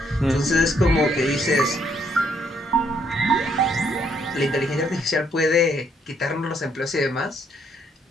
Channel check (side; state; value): both; normal; correlation 0.70